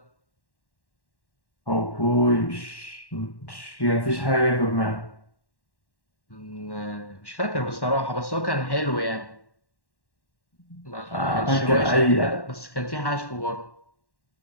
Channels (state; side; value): late; right; 1.1 ms